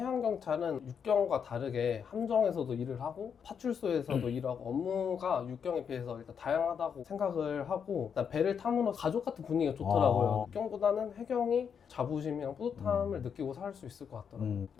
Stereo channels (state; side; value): quieter; right; 7.1 dB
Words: 육경과 다르게 함정에서도 일을 하고 파출소에서도 일하고 업무가 육경에 비해서 일단 다양하다고 생각을 하고 일단 배를 타므로 가족 같은 분위기가 좋더라고요. 육경보다는 해경이 자부심이랑 뿌듯함을 느끼고 살 수 있을 것 같더라고요.